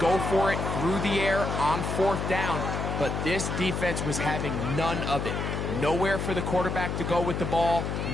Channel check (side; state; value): left; noise; hum, 2 dB below the sound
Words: for it through the air on 4th down. But this defense was having none of it. Nowhere for the quarterback to go with the ball,